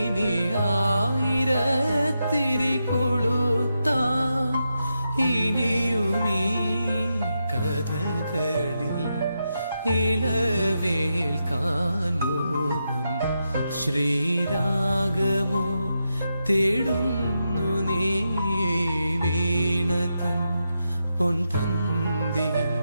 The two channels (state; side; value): inverted; both; correlation -0.86